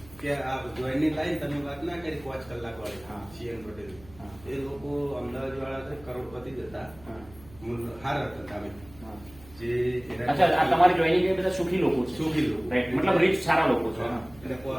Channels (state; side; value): noise; right; hum, 22 dB below the sound